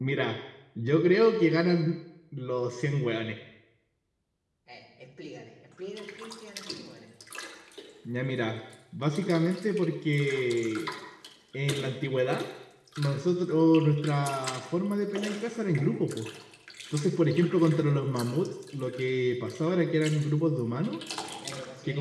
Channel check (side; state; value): both; identical; correlation 1.00